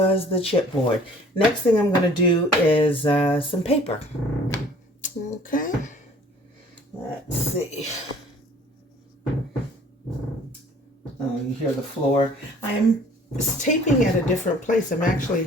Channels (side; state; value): both; normal; correlation 0.53